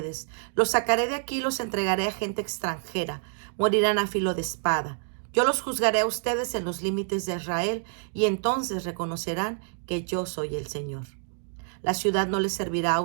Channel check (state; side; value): silent; left; 60 dB below the other